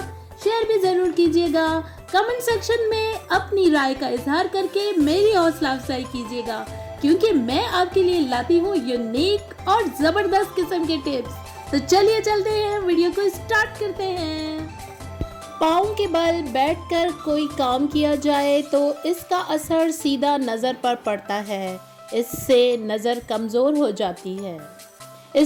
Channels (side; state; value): both; identical; correlation 1.00